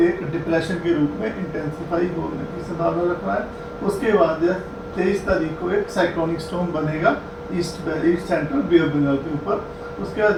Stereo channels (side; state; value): both; identical; correlation 1.00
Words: एक डिप्रेशन के रूप में इंटेंसिफाई होने की संभावना रख रहा है। उसके बाद 23 तारीख को एक साइक्लोनिक स्टॉर्म बनेगा east central bay of Bengal के ऊपर। उसके